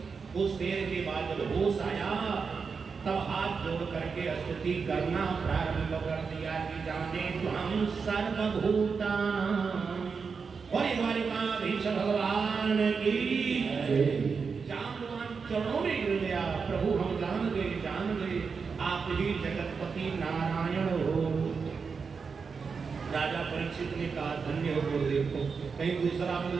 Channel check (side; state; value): left; quieter; 5.4 dB